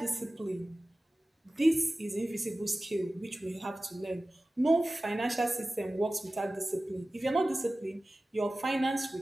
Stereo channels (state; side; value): normal; both; correlation 0.96